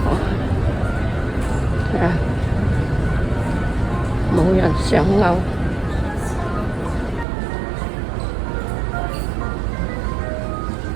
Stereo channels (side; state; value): left; drops out; at 7.2 s